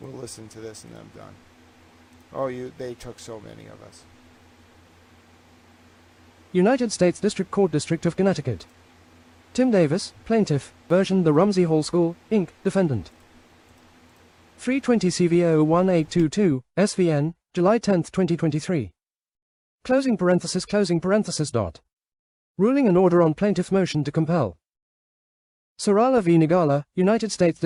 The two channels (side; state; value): both; identical; correlation 1.00